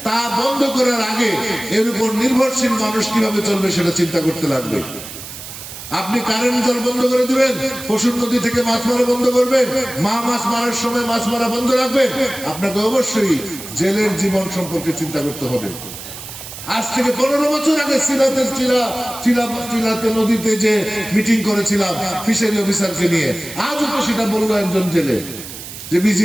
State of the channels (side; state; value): right; noise; hiss, 12 dB below the sound